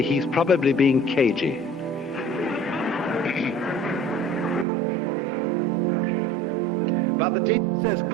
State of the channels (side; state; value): left; drops out; at 4.7 s